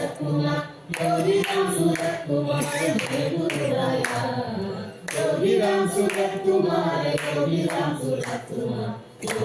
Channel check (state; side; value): identical; both; correlation 1.00